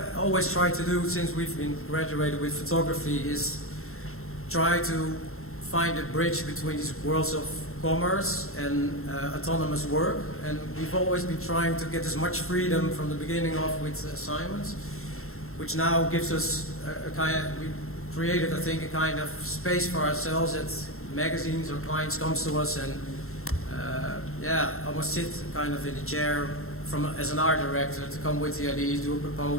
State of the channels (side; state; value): right; late; 0.62 ms